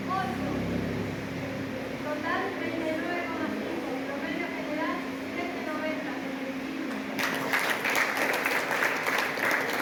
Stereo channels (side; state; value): both; identical; correlation 1.00